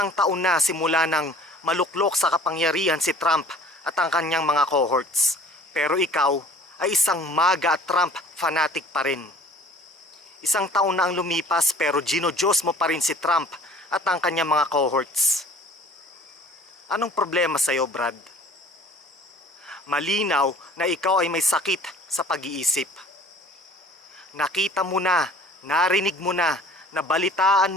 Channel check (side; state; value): both; normal; correlation 0.49